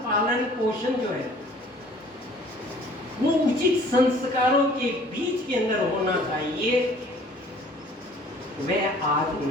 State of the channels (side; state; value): both; normal; correlation 0.53